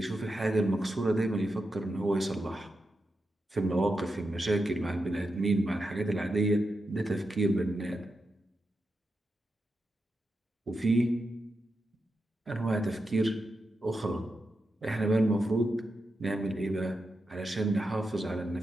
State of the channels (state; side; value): normal; both; correlation 0.88